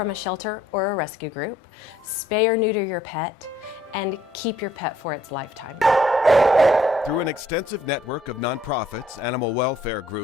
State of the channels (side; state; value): both; normal; correlation 0.63